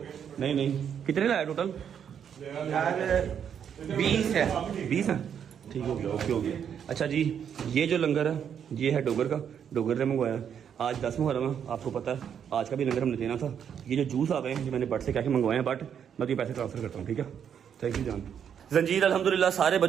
नहीं कितने लाया टोटल? 20 है। 20 है, ठीक हो गया, ओके हो गया। अच्छा जी, ये जो लंगर है ये है डोगर का, डोगर ने मंगवाया। आज 10 मुहर्रम है, आपको पता है आज का भी लंगर हमने देना था। ये जो जूस आ गए हैं, ये मैंने बट से क्या मंगवाए हैं, बट मैं तो पैसे ट्रांसफर करता हूँ, ठीक है। थैंक यू जान। जंजीर अल्हम्दुलिल्लाह सारे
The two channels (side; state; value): left; quieter; 8.2 dB